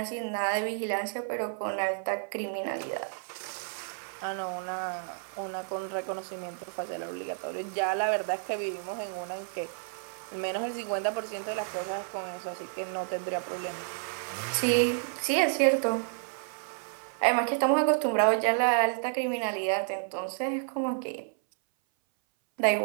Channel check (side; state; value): left; silent; 57 dB below the other